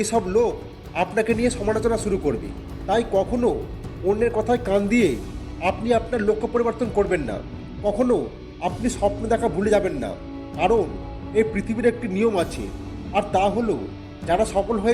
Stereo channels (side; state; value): both; identical; correlation 1.00